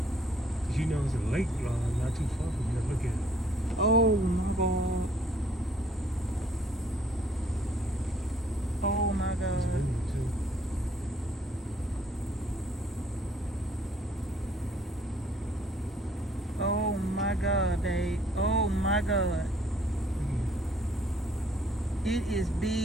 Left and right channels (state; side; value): normal; both; correlation 0.62